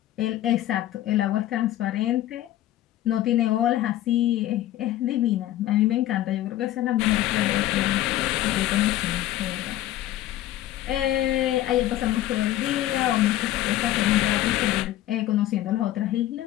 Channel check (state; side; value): quieter; right; 14.0 dB